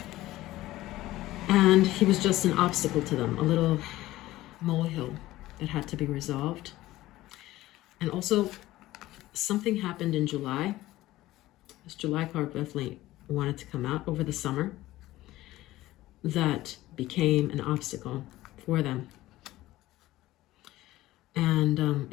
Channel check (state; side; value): quieter; right; 16.5 dB